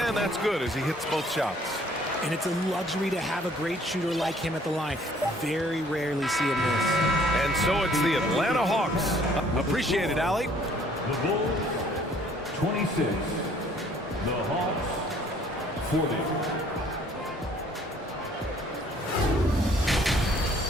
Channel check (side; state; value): both; normal; correlation 0.59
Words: that's good as he hits both shots. And it's a luxury to have a great shooter like him at the line. Very rarely see him miss. And so it's the Atlanta Hawks. Appreciate it, Allie. The Bulls, 26. The Hawks, 40.